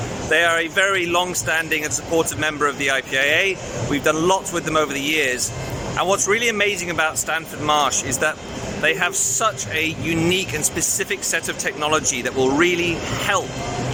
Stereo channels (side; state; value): both; identical; correlation 1.00